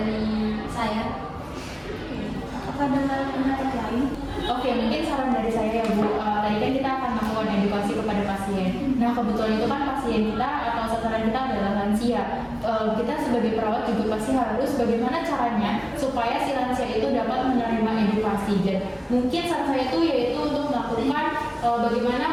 saya. apakah ada pendapat lain? Oke, mungkin saran dari saya ya Bu, tadi kan kita akan melakukan edukasi kepada pasien. Nah kebetulan itu kan pasien kita atau sasaran kita adalah lansia. Kita sebagai perawat juga pasti harus bagaimana caranya supaya si lansia itu dapat menerima edukasi. Dan mungkin saran saya itu yaitu untuk melakukan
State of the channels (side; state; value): both; identical; correlation 1.00